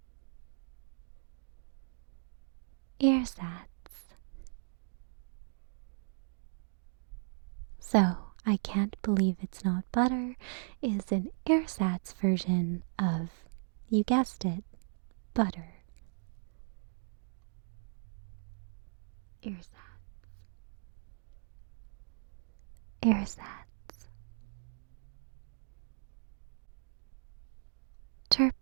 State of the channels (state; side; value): silent; left; digital silence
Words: Ersatz. So, I can't believe it's not butter is an ersatz version of, you guessed it, butter. Ersatz. Ersatz.